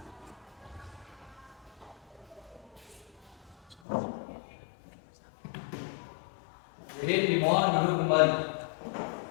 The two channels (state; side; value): drops out; right; at 3.8 s